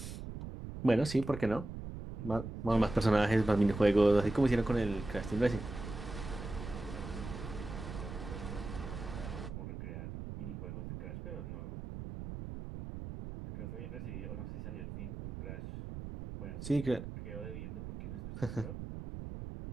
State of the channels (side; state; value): right; noise; rumble, 8 dB below the sound